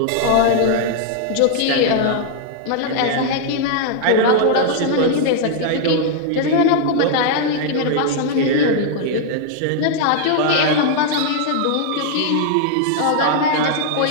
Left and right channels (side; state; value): both; different; correlation -0.01